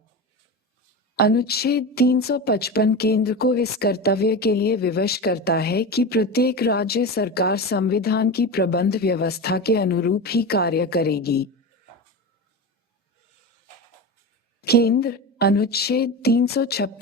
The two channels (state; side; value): normal; both; correlation 0.24